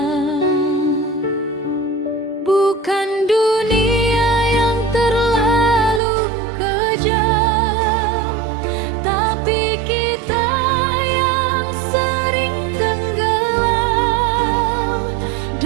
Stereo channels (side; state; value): left; drops out; at 6.0 s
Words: Bukan dunia yang terlalu kejam, tapi kita yang sering tenggelam